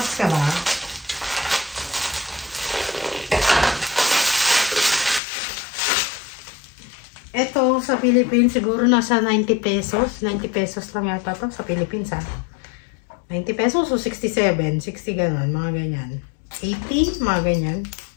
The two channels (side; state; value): right; drops out; at 5.2 s